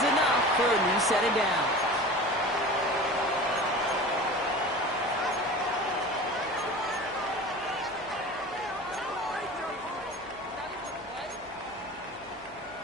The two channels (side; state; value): left; noise; hum, 28 dB below the sound